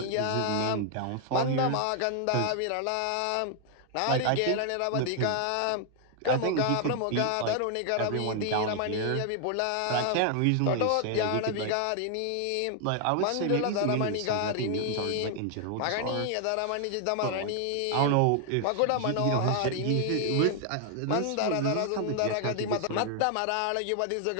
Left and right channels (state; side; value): different; both; correlation 0.00